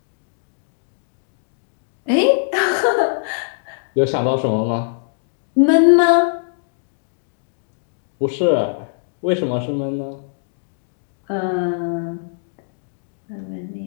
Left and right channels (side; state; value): right; silent; digital silence